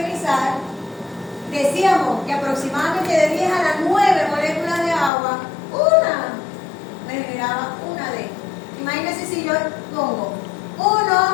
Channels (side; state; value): right; drops out; at 5.1 s